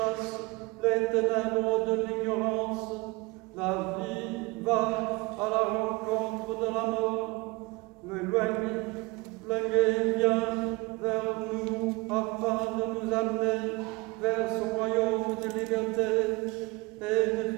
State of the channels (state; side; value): quieter; left; 25.0 dB